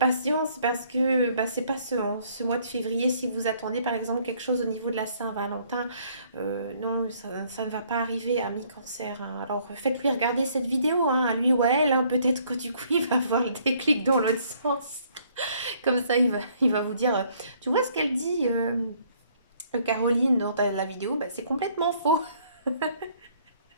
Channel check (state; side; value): inverted; both; correlation -0.64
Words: parce que bah, c'est pas ce mois de février si vous attendez par exemple quelque chose au niveau de la Saint-Valentin. Non, ça ne va pas arriver à mi-cancer. Hein. Alors faites-lui regarder cette vidéo, hein, à lui ou à elle. Hein. Peut-être que du coup il va avoir le déclic dans l'autre sens. Comme ça il va vous dire, tu vois ce qu'elle dit Caroline dans la vidéo, bah, c'est complètement faux.